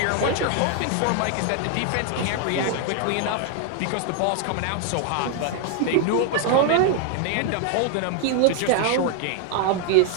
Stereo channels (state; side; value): different; both; correlation 0.00